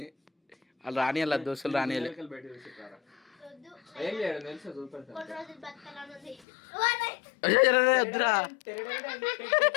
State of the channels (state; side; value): drops out; right; at 6.4 s